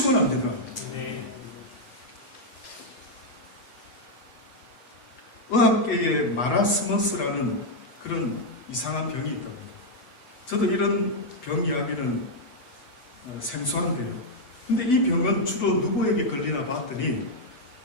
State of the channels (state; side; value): late; right; 8.0 ms